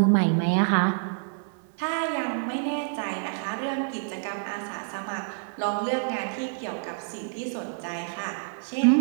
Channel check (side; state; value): left; silent; digital silence